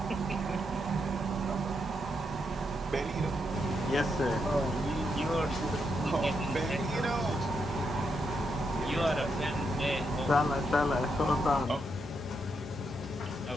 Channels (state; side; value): normal; both; correlation 0.81